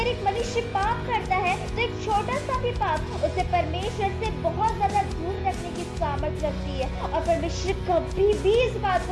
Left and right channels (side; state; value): both; identical; correlation 1.00